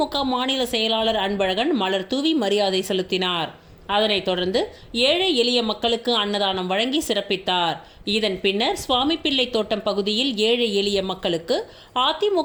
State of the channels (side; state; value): both; identical; correlation 1.00